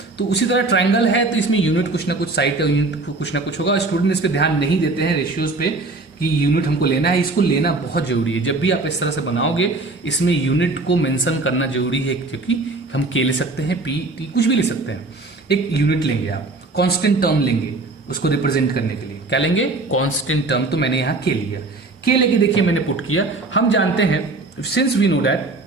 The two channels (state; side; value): quieter; left; 3.3 dB